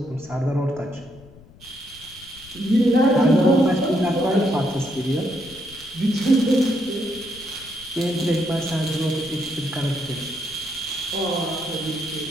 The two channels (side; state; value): left; noise; rumble, 23 dB below the sound